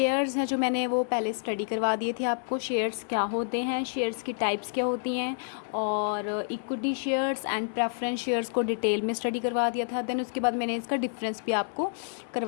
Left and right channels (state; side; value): silent; right; 59 dB below the other